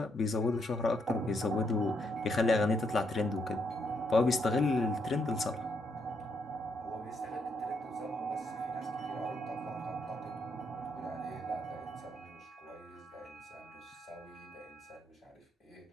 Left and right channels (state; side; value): normal; both; correlation 0.76